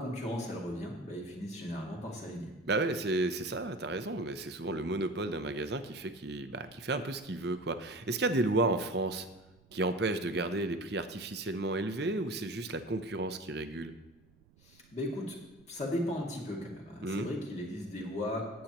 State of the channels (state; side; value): noise; right; rumble, 28 dB below the sound